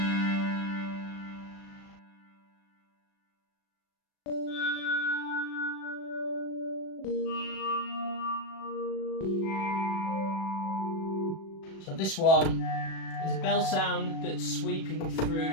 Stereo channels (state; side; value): late; right; 37 ms